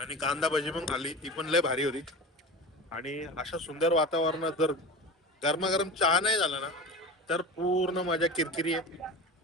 आणि कांदा भजी पण खाल्ली, ती पण लय भारी होती. आणि अशा सुंदर वातावरणात जर गरमागरम चहा नाही झाला ना तर पूर्ण मजा किरकिरी आहे.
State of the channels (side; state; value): both; normal; correlation 0.31